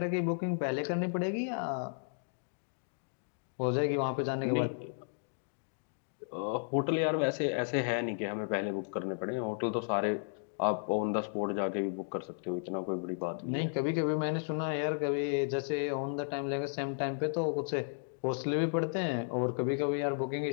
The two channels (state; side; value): silent; right; digital silence